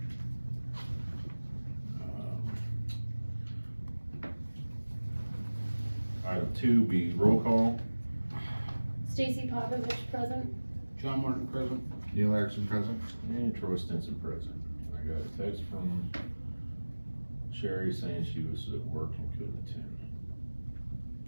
Item 2 be roll call. Stacy Popovich present. John Martin present. Neil Erickson present. And Troy Stinson present. I got a text from Sherry saying she was at work and couldn't attend.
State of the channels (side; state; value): both; inverted; correlation -1.00